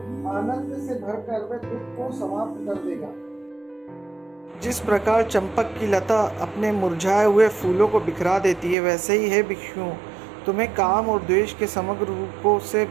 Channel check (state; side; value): drops out; left; at 8.8 s